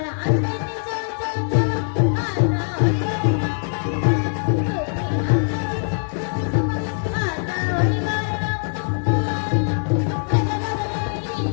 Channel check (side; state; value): right; silent; digital silence